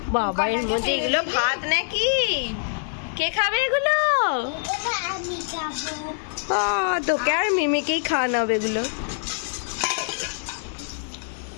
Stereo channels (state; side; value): silent; right; digital silence